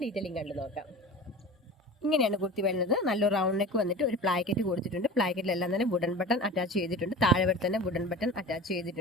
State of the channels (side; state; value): both; normal; correlation 0.35